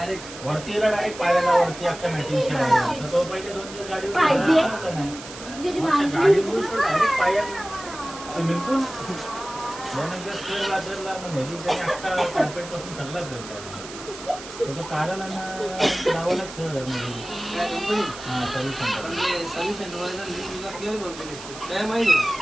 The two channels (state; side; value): noise; right; hiss, 13 dB below the sound